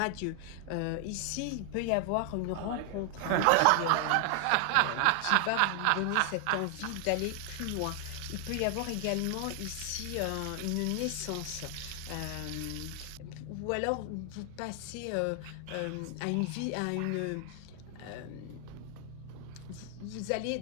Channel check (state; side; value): different; both; correlation 0.00